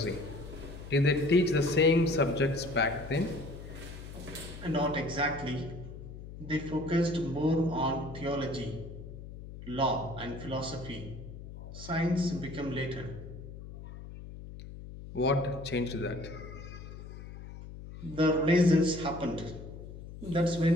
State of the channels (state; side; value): noise; left; hum, 12 dB below the sound